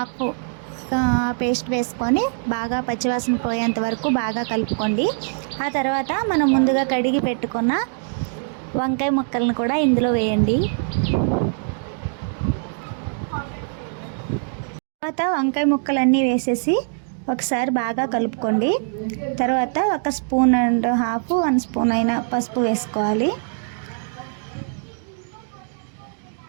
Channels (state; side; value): silent; left; 61 dB below the other